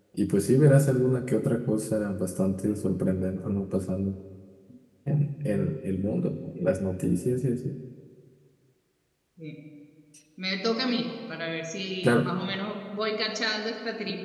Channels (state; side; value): identical; both; correlation 1.00